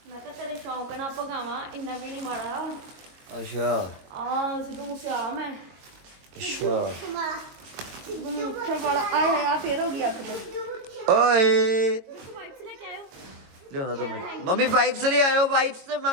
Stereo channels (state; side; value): late; left; 22 ms